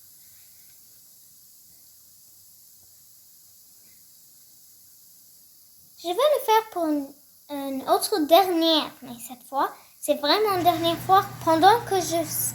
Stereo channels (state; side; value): identical; both; correlation 1.00